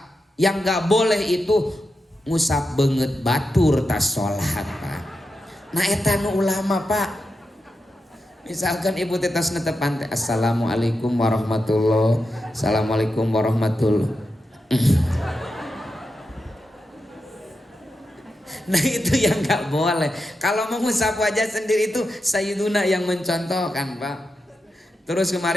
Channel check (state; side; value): normal; both; correlation 0.88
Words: yang gak boleh itu ngusap banget batur tas sholat Pak. Nah eta nu ulama Pak. Misalkan ibu tetas netepan, Assalamualaikum warahmatullahi, Assalamualaikum warahmatullahi. Nah itu yang gak boleh. Kalau mengusap wajah sendiri itu Sayyiduna yang mencontohkan Pak. Terus